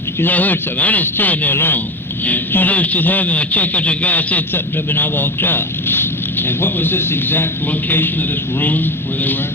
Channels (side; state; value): both; normal; correlation 0.23